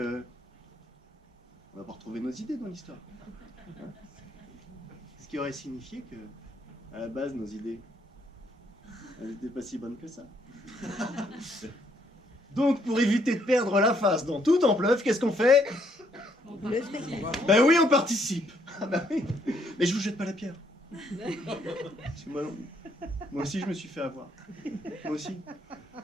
on va pas retrouver nos idées dans l'histoire. Hein. Ce qui aurait signifié que, à la base, nos idées, elles n'étaient pas si bonnes que ça. Donc, pour éviter de perdre la face dans tout en pleuve, qu'est-ce qu'on fait? Le spectacle. Ben oui, on participe. Ah ben oui. Mais je vous jette pas la pierre. Parce que moi aussi, je me suis fait avoir. Moi aussi.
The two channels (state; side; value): normal; both; correlation 0.70